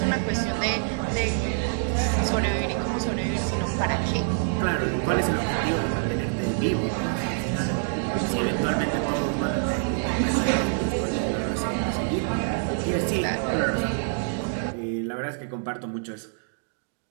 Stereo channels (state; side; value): silent; left; digital silence